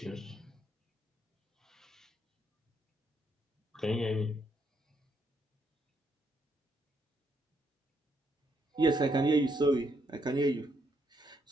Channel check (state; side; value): normal; both; correlation 0.75